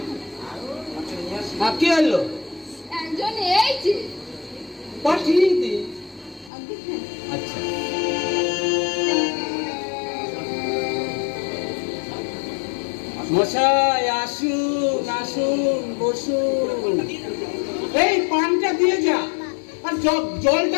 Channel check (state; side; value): drops out; right; at 6.5 s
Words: কে এলো? একজন এই যে পাঠিয়ে দে। আচ্ছা মশাই আসুন আসুন বসুন। এই পানটা দিয়ে যা, আর